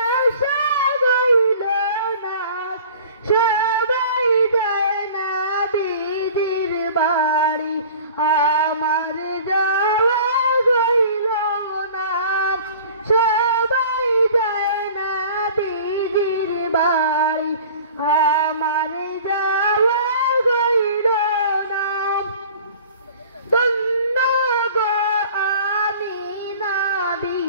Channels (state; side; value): inverted; both; correlation -0.45